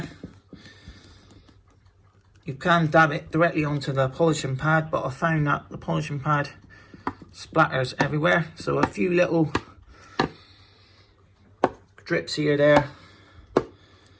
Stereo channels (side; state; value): both; identical; correlation 1.00